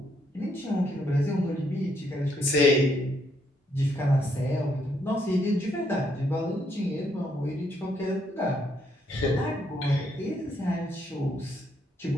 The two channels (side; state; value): both; normal; correlation 0.73